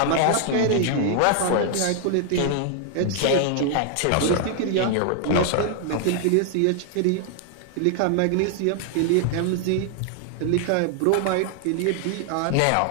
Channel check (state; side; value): different; both; correlation 0.00